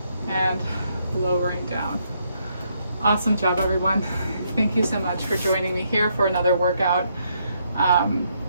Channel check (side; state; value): both; inverted; correlation -0.75